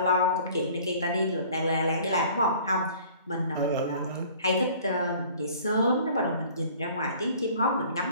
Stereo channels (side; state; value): both; inverted; correlation -0.51